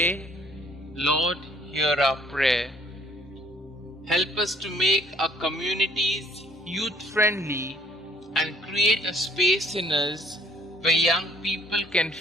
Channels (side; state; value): both; normal; correlation 0.60